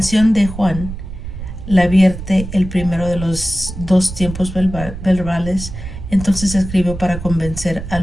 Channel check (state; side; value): noise; right; rumble, 9 dB below the sound